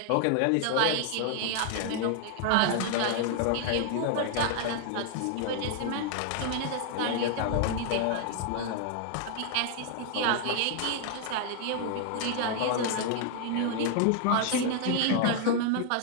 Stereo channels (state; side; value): different; both; correlation 0.00